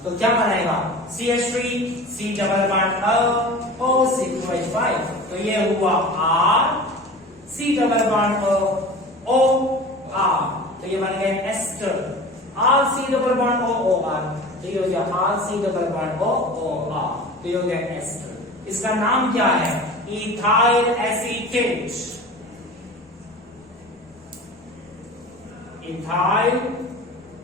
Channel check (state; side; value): normal; both; correlation 0.37